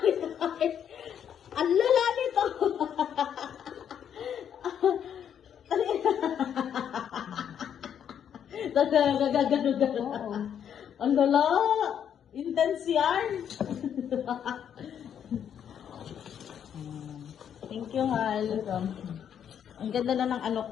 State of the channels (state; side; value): quieter; right; 8.8 dB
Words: nito! Ang lala nito! Gagano. Ang lala! Intense yan! Thank you, Hal. Ang ganda na ng